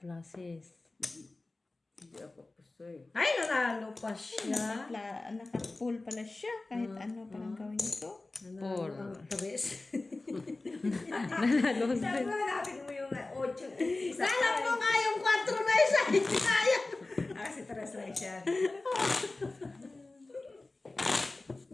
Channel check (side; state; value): right; quieter; 3.2 dB